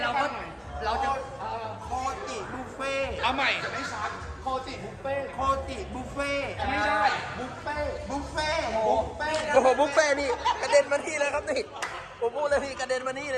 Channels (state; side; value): identical; both; correlation 1.00